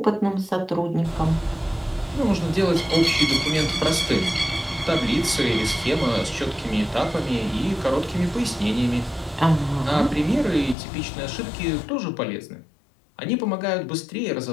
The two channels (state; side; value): drops out; right; at 10.8 s